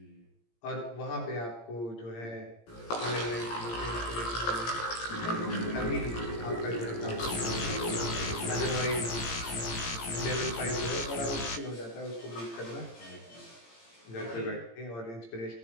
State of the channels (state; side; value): late; right; 17 ms